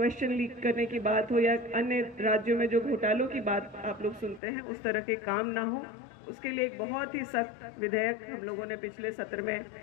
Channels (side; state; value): right; drops out; at 4.4 s